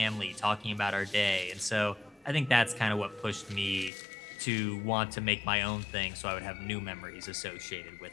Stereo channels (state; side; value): drops out; right; at 3.9 s